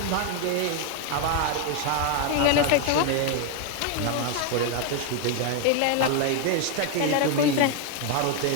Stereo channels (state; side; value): different; both; correlation 0.01